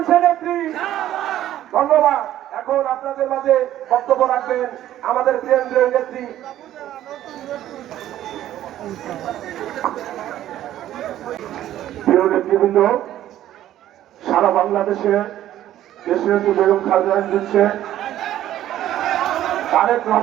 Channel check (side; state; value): left; quieter; 12.7 dB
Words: ধন্যবাদ। এখন আপনাদের মাঝে বক্তব্য রাখবেন আমাদের কেন্দ্রীয় নেত্রী প্রিয় নেতৃবৃন্দ, সারা বাংলাদেশে দেশের যে বেগম খালেদা দিচ্ছে তারেক